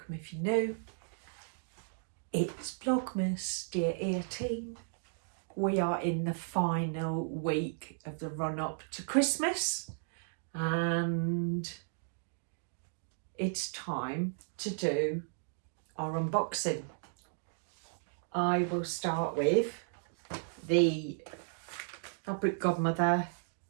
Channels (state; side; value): silent; left; digital silence